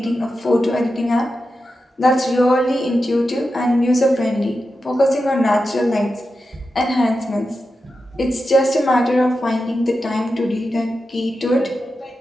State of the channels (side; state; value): both; normal; correlation 0.90